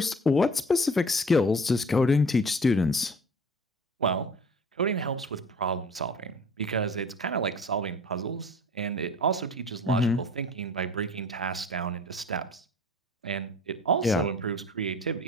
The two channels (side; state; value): both; normal; correlation 0.44